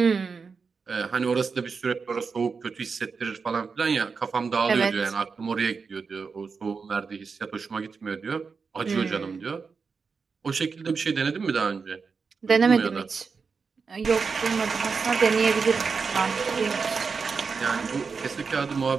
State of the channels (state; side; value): quieter; left; 5.1 dB